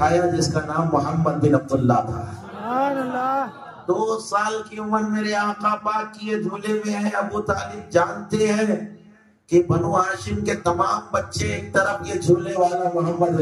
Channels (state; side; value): identical; both; correlation 1.00